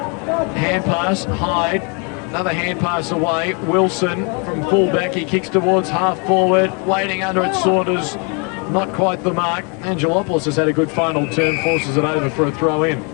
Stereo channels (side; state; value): right; quieter; 34.8 dB